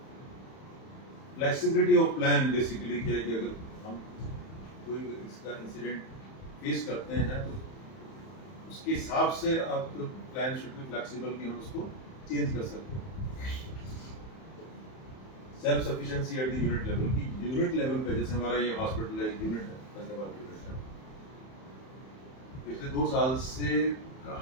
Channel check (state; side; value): late; right; 31 ms